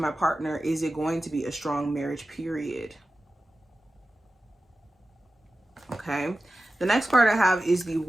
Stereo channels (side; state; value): both; normal; correlation 0.94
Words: my partner, is it going to be a strong marriage, period? Okay. The next card I have is the